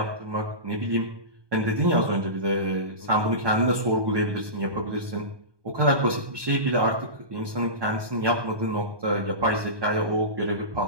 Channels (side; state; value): left; late; 1.2 ms